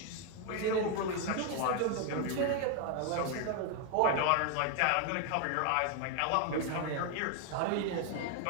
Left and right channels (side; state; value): both; different; correlation 0.00